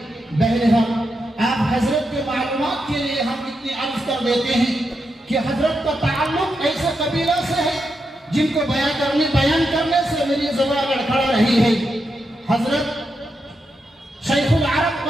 بہرحال آپ حضرت کے معلومات کے لیے ہم اتنی عرض کر دیتے ہیں کہ حضرت کا تعلق ایسے قبیلہ سے ہے جن کو بیان کرنے سے میری زبان لڑکھڑا رہی ہے۔ حضرت شیخ العرب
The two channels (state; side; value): normal; both; correlation 0.85